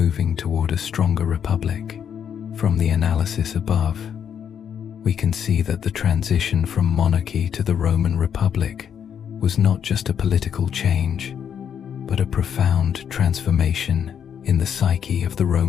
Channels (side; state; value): right; quieter; 8.3 dB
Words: toward a stronger republic. From the analysis above, we can see that the transition from monarchy to the Roman Republic was not just a political change, but a profound transformation in the psyche of the